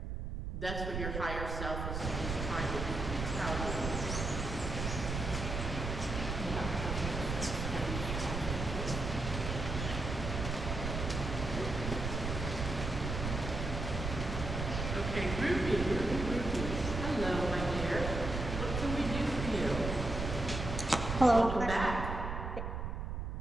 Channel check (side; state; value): right; noise; rumble, 4 dB below the sound